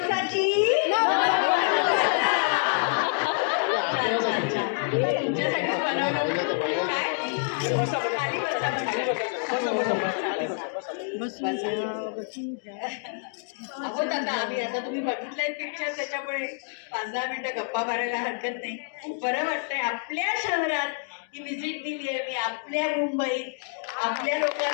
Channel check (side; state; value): right; silent; 58 dB below the other